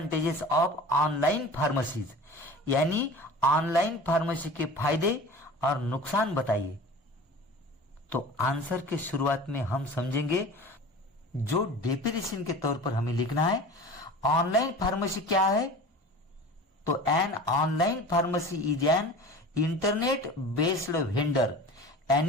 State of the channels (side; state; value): both; normal; correlation 0.38